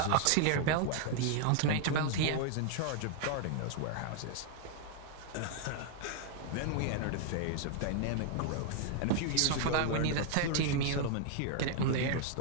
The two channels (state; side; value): different; both; correlation 0.00